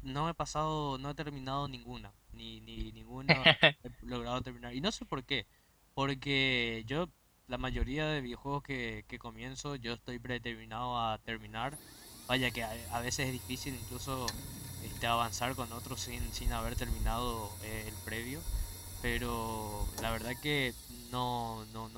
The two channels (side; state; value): both; identical; correlation 1.00